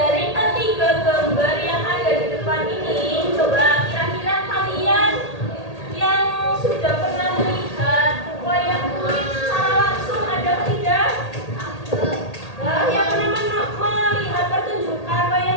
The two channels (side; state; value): right; late; 1.8 ms